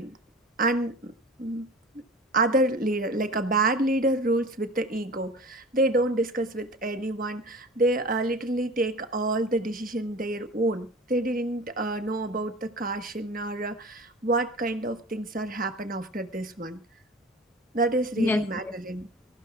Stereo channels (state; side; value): normal; both; correlation 0.37